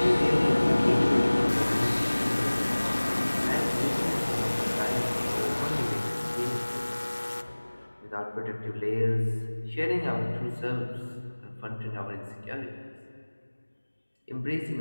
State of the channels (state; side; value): inverted; both; correlation -1.00